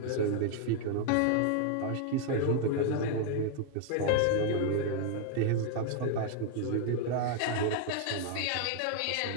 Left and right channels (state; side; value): different; both; correlation 0.00